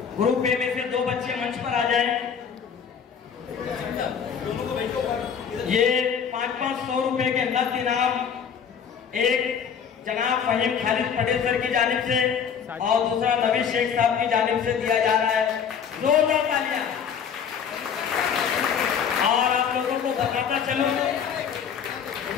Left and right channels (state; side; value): quieter; right; 7.3 dB